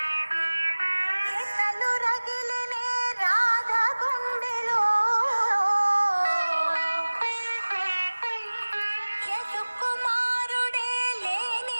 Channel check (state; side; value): inverted; both; correlation -1.00